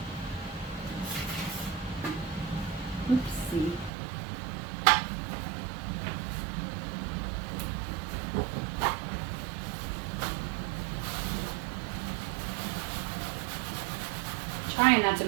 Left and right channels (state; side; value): drops out; left; at 3.9 s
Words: Oopsie. Trying not to